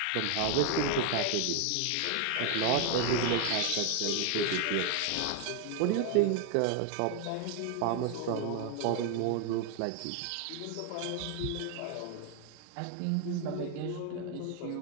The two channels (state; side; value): different; both; correlation 0.01